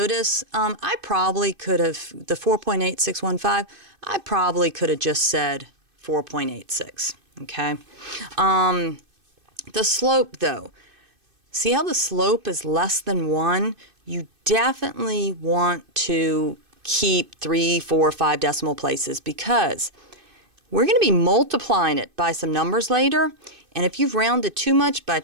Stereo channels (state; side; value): late; left; 2.5 ms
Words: I probably could have, the 4.8615, I probably could have just said 4.86, okay? The slope, though, see how the slope is less than 1? You definitely want to keep 3, 4, 5 decimal places, because we're going to be multiplying it by some numbers later, and if you've rounded too much, by